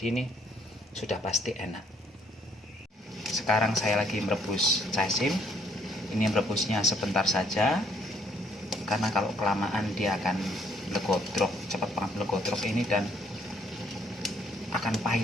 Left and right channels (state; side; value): normal; both; correlation 0.66